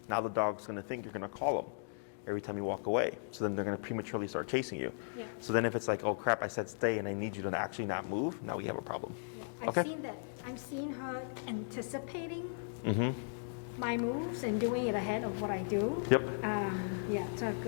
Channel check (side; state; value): right; silent; digital silence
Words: Now the dog's going to think you're going to call them every time you walk away. So then they're going to prematurely start chasing you. Yeah. So then if it's like, oh crap, I said stay and I need you to actually not move, now we have a problem. Yeah. I've seen that. I've seen her anticipating my moves and doing it ahead of what I do. Yep. So